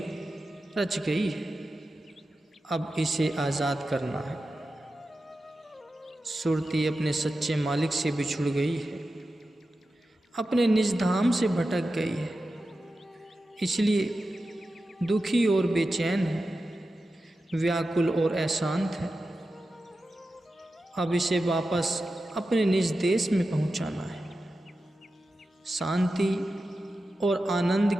रच गई है। अब इसे आज़ाद करना है। सुरती अपने सच्चे मालिक से बिछुड़ गई है, अपने निज धाम से भटक गई है, इसलिए दुखी और बेचैन है, व्याकुल और अशांत है। अब इसे वापस अपने निज देश में पहुंचाना है, शांति और आनंद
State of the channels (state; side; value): normal; both; correlation 0.92